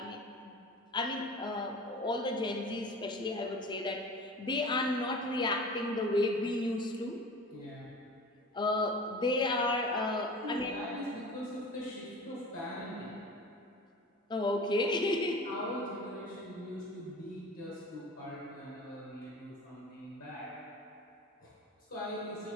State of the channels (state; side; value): normal; both; correlation 0.38